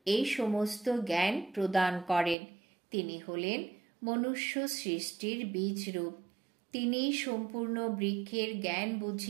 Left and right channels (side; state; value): left; drops out; at 2.4 s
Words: এই সমস্ত জ্ঞান প্রদান করেন। তিনি হলেন মনুষ্য সৃষ্টির বীজ রূপ। তিনি সম্পূর্ণ বৃক্ষের জ্ঞান